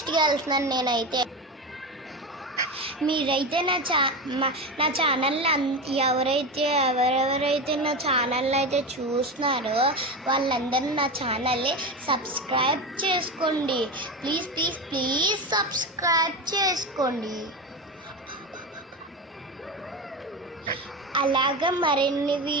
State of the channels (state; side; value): normal; both; correlation 0.20